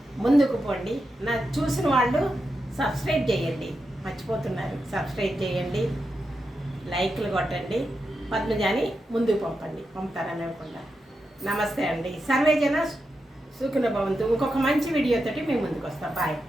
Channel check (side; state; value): both; normal; correlation 0.87